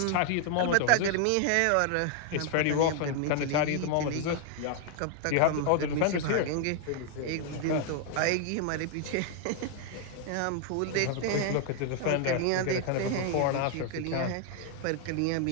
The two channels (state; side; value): different; both; correlation 0.00